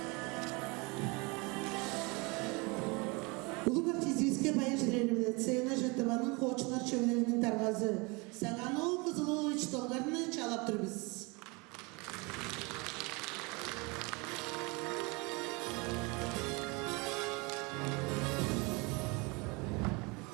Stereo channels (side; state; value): left; quieter; 27.8 dB